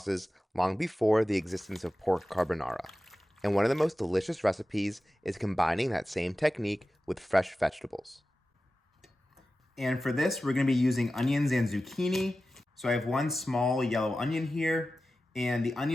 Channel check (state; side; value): normal; both; correlation 0.94